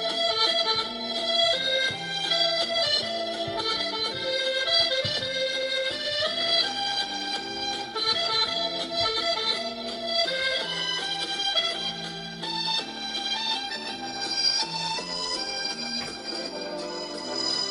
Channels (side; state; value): both; identical; correlation 1.00